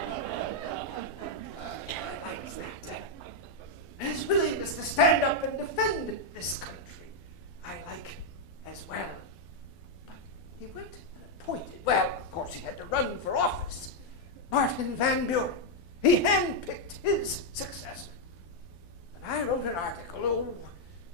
liked that. His willingness to stand up and defend this country, I like as well. But he went and appointed, well, of course he had to run for office, Martin Van Buren. He handpicked his successor. And I wrote an article,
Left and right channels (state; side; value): late; right; 12 ms